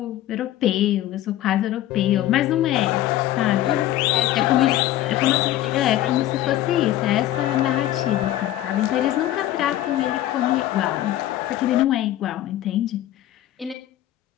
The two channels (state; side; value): quieter; right; 13.8 dB